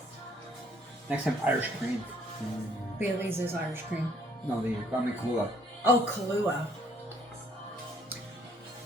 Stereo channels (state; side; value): normal; both; correlation 0.63